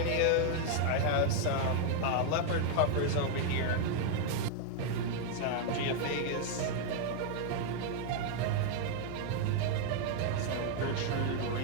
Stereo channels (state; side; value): different; both; correlation 0.00